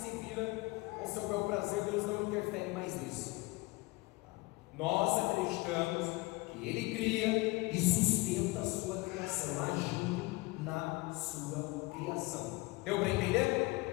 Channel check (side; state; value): right; quieter; 22.7 dB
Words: vira ao seu bel prazer, Deus não interfere mais nisso. Nós acreditamos que ele cria e sustenta a sua criação, agindo na sua criação. Deu para entender?